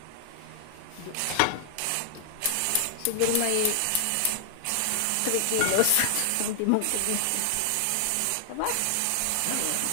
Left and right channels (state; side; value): different; both; correlation 0.00